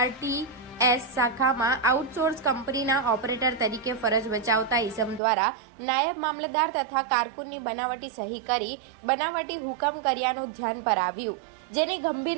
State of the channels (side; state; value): left; drops out; at 5.2 s